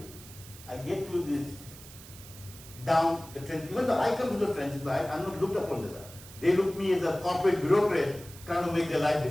I get to this down the trench. Even though I come to the trenches, but I'm not looked upon that. They look me as a corporate bureaucrat trying to make their life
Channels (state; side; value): noise; right; hiss, 17 dB below the sound